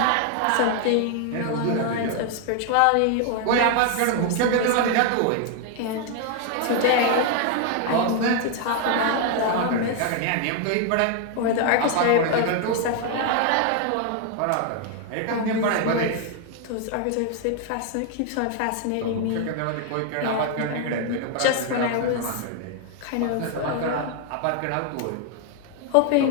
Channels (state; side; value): different; both; correlation 0.00